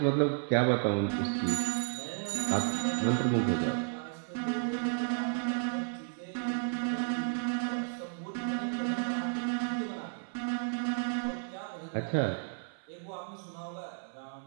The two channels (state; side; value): silent; left; 56 dB below the other